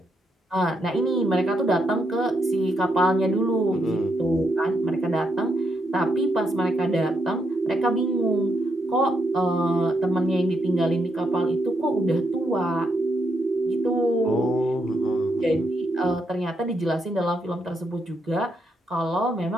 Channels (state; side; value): normal; both; correlation 0.79